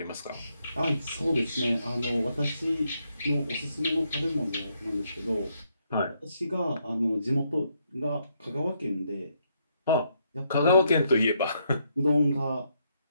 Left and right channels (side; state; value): both; inverted; correlation -0.76